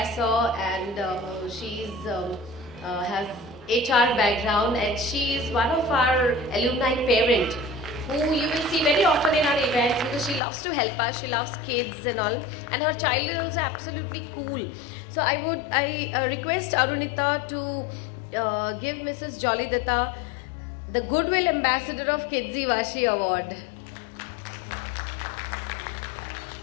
and she's has HR background, and she is one of our alumni parent who you will see very often in our events because she loves to help us, she loves kids and all, and her child is also absolutely cool. So I request Arunita to give Mrs. Jolly Datta the Goodwill Ambassador of Kidzee Vashi Award.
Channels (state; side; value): drops out; right; at 10.4 s